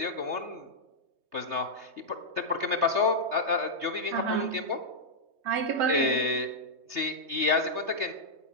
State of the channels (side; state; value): left; late; 3.2 ms